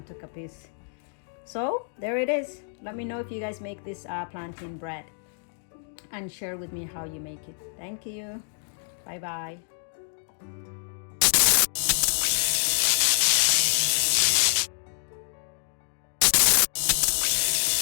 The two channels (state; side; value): silent; right; digital silence